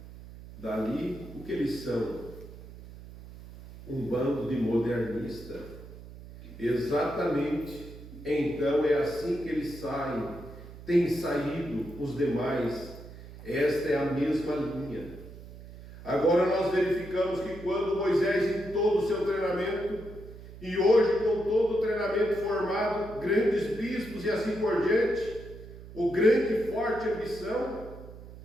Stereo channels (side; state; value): right; noise; hum, 15 dB below the sound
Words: dali, o que eles são? Um bando de modernistas. Exatamente. Então é assim que eles saem. Tem saído os demais. Esta é a mesma linha. Agora nós verificamos que quando Moisés, em todo o seu treinamento, e hoje com todo o treinamento formado, grandes bispos e assim por diante, o grande e forte ambição,